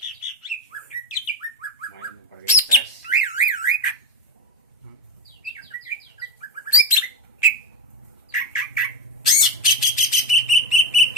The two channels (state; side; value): normal; both; correlation 0.12